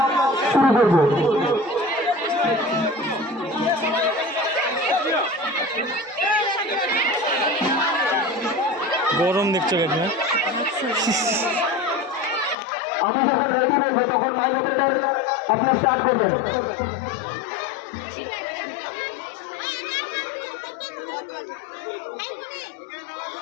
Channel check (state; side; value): drops out; right; at 12.6 s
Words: শুরু করব। গরম দেখছো কেন? আমি যখন রেডি বলবো তখন মাইক অপারেটর আপনার স্টার্ট করবেন।